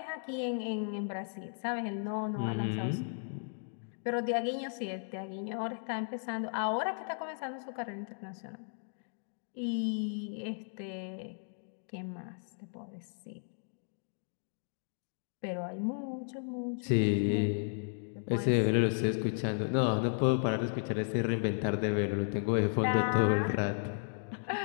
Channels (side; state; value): right; silent; digital silence